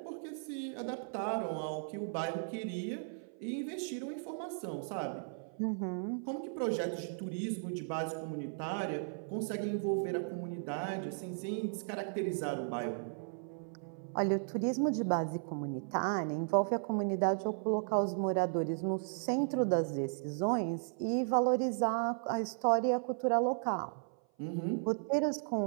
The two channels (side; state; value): left; silent; 54 dB below the other